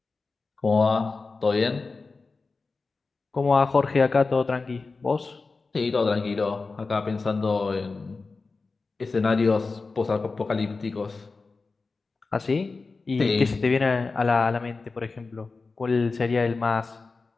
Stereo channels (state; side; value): quieter; right; 4.0 dB